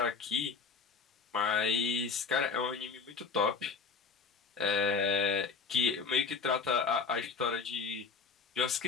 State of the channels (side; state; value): right; quieter; 5.1 dB